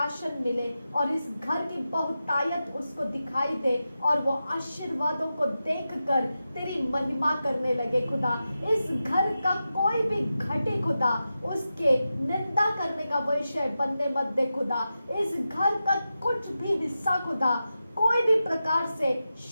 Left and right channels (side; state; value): both; inverted; correlation -0.91